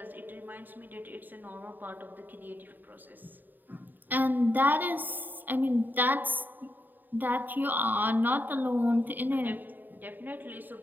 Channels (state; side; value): late; left; 0.090 ms